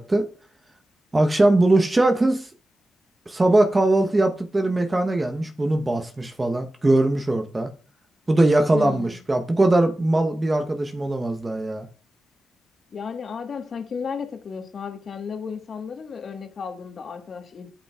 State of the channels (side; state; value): both; normal; correlation 0.95